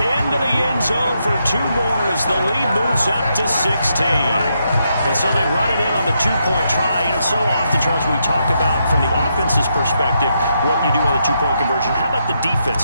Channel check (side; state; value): both; inverted; correlation -0.80